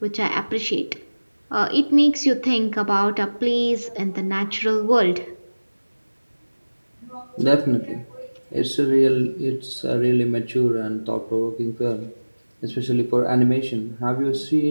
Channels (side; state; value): both; inverted; correlation -1.00